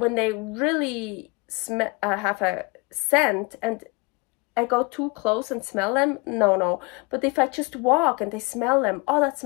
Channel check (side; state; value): right; quieter; 28.2 dB